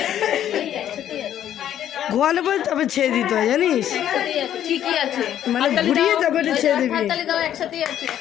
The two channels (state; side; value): quieter; right; 10.8 dB